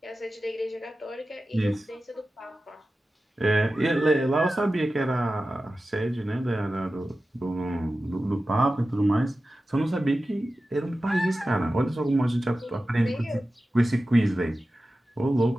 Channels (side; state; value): both; normal; correlation 0.94